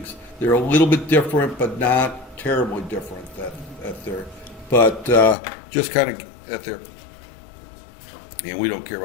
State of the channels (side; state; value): right; drops out; at 5.4 s